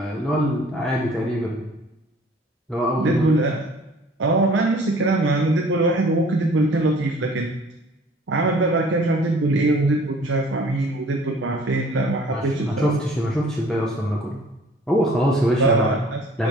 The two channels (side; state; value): both; normal; correlation 0.52